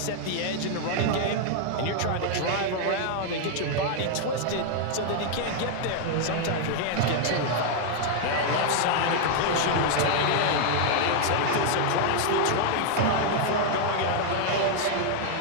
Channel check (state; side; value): different; both; correlation 0.00